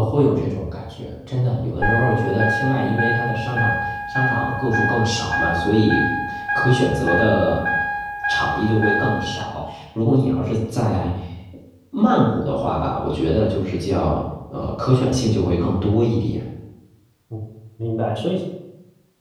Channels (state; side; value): identical; both; correlation 1.00